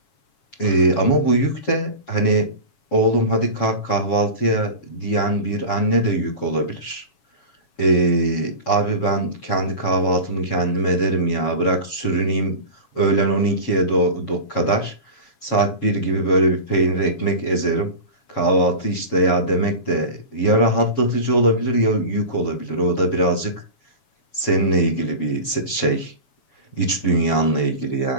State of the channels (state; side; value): late; right; 7.2 ms